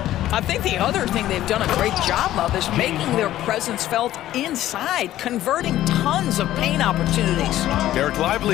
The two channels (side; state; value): right; quieter; 13.7 dB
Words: I think the other thing they've done a great job of is making their presence felt inside, converting tons of paint opportunities. Derek